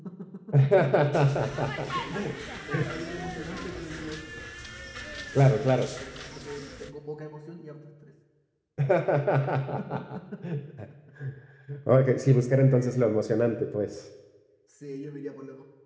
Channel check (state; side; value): identical; both; correlation 1.00